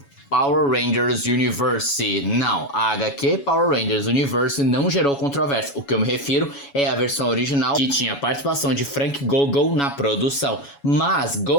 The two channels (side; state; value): right; late; 7.1 ms